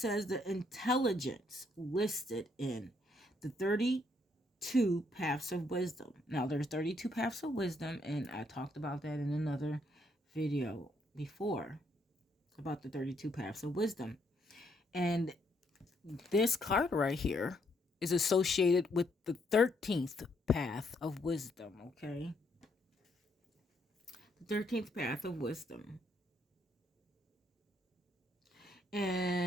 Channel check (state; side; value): normal; both; correlation 0.72